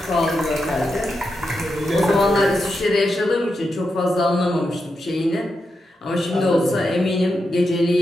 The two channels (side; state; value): both; normal; correlation 0.86